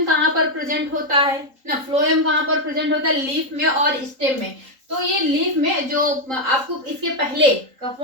कहाँ पर प्रेजेंट होता है ना, फ्लोएम कहाँ पर प्रेजेंट होता है, लीफ में और स्टेम में। तो ये लीफ में जो आपको इसके पहले का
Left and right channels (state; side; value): late; left; 3.8 ms